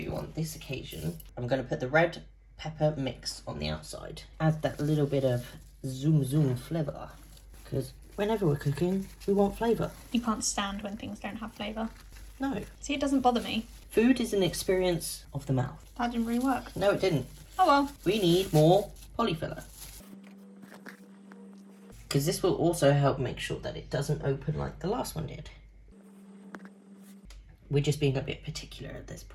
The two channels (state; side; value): identical; both; correlation 1.00